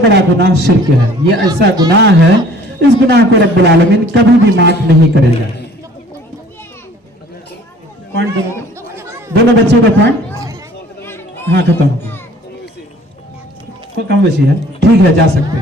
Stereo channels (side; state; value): both; normal; correlation 0.52